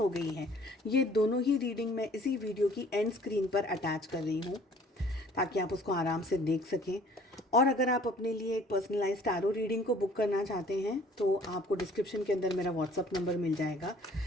गई है, ये दोनों ही रीडिंग मैं इसी वीडियो की एंड स्क्रीन पर अटैच कर रही हूँ ताकि आप उसको आराम से देख सकें। और अगर आप अपने लिए एक पर्सनलाइज्ड टैरो रीडिंग को बुक करना चाहते हैं तो आपको डिस्क्रिप्शन के अंदर मेरा व्हाट्सअप नंबर मिल जाएगा।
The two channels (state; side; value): normal; both; correlation 0.55